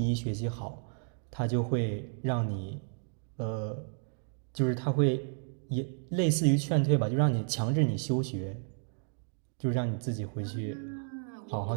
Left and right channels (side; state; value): left; silent; 56 dB below the other